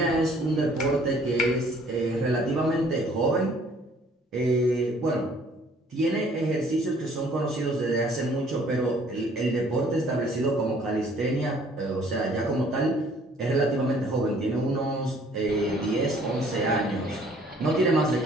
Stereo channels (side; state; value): both; normal; correlation 0.58